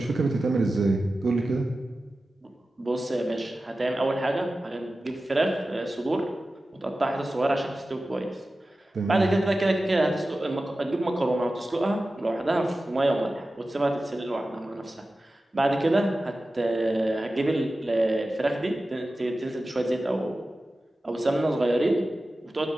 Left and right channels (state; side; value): normal; both; correlation 0.95